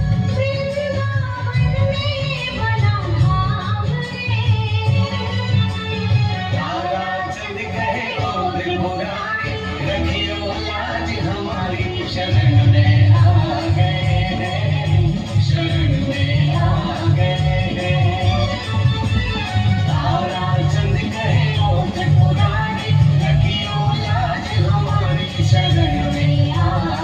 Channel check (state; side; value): identical; both; correlation 1.00